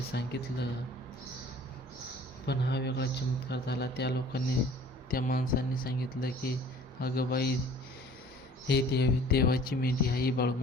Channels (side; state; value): both; normal; correlation 0.50